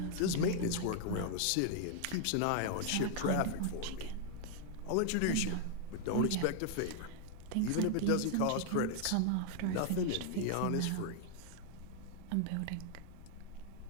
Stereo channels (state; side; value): different; both; correlation 0.00